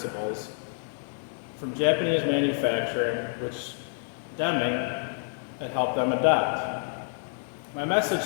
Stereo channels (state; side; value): silent; right; digital silence